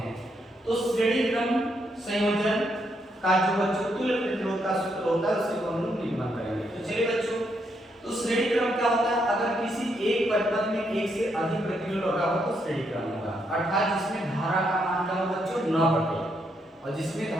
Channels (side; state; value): both; normal; correlation 0.77